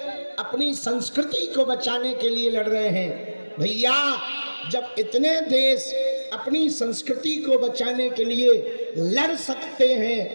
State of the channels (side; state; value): both; inverted; correlation -1.00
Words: अपनी संस्कृति को बचाने के लिए लड़ रहे हैं। भैया, जब इतने देश अपनी संस्कृति को बचाने के लिए लड़ सकते